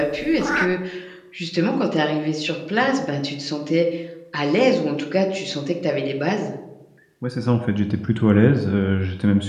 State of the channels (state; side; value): identical; both; correlation 1.00